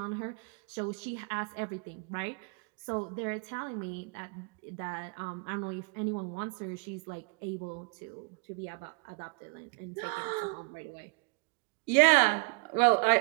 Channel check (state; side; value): quieter; left; 31.3 dB